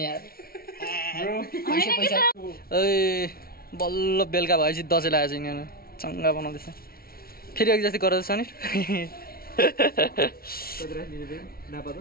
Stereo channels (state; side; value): late; right; 0.44 ms